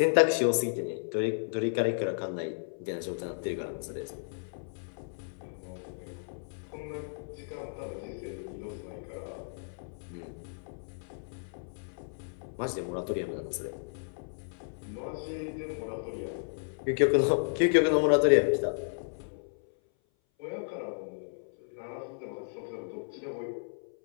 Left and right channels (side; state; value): right; silent; 56 dB below the other